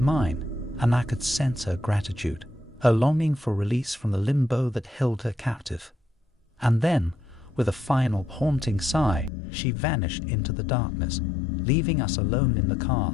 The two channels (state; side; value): drops out; right; at 9.3 s